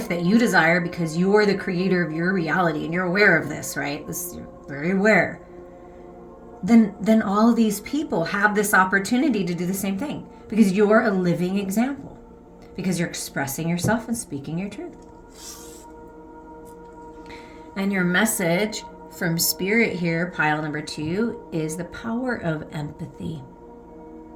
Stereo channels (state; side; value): identical; both; correlation 1.00